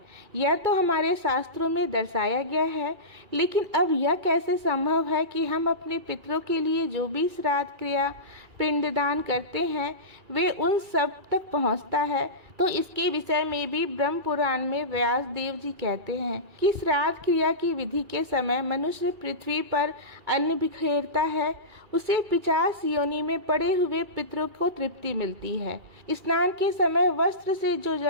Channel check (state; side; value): late; left; 2.3 ms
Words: यह तो हमारे शास्त्रों में दर्शाया गया है, लेकिन अब यह कैसे संभव है कि हम अपने पितरों के लिए जो भी श्राद्ध क्रिया पिंडदान करते हैं वे उन सब तक पहुंचता है। तो इसके विषय में भी ब्रह्म पुराण में व्यास देव जी कहते हैं कि श्राद्ध क्रिया की विधि के समय मनुष्य पृथ्वी पर अन्न बिखेरता है, उसे 50 योनि में पड़े हुए पितरों को तृप्ति मिलती है। स्नान के समय वस्त्र से जो